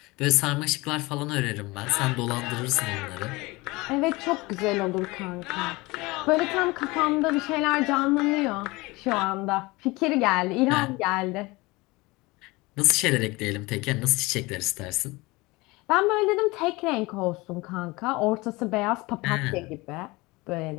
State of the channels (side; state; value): right; quieter; 22.8 dB